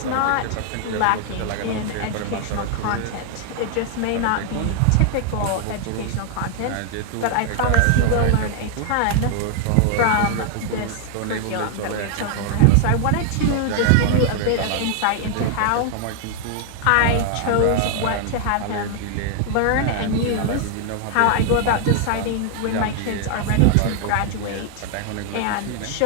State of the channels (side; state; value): both; different; correlation 0.00